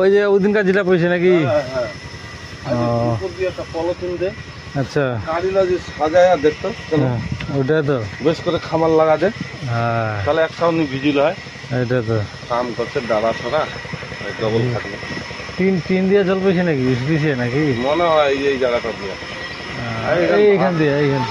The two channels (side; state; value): both; identical; correlation 1.00